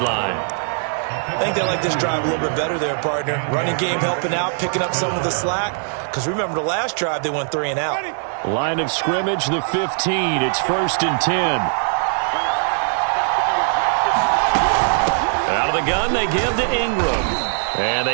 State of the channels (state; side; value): silent; left; digital silence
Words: line. I think they like this drive a little bit better there, partner. Running game helping out, picking up some of the slack. Because remember, the last drive, they went 3 and out. Line of scrimmage, the 15. It's 1st and 10. Out of the gun, they give to Ingram. And